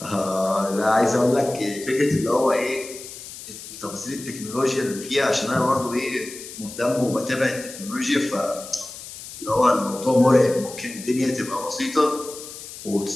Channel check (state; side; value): noise; left; hiss, 13 dB below the sound